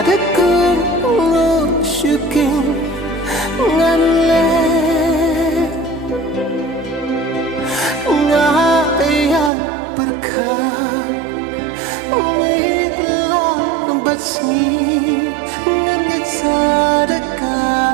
ngusyukin nganle ngayat berkah mitlah batsngi ngangit sadaka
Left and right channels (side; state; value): left; drops out; at 9.5 s